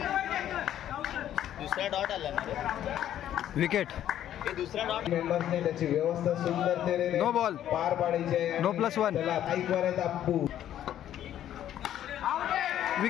दुसरा डॉट आला विकेट. दुसरा डॉट मेंबर्सने त्याची व्यवस्था सुंदरतेने नो बॉल पार पाडायची आहे. नो +1. चला ऐक वर आहेत अप्पू.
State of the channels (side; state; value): right; quieter; 11.3 dB